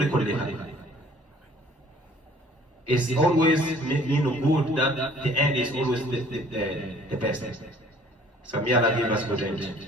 kulliha. It's always mean good that the end is always the best. So may Allah give us good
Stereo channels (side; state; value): both; normal; correlation 0.55